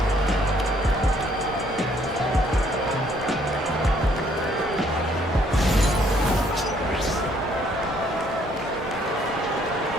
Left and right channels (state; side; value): normal; both; correlation 0.65